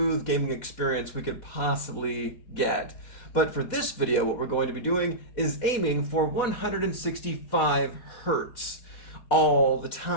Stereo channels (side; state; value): right; late; 4.1 ms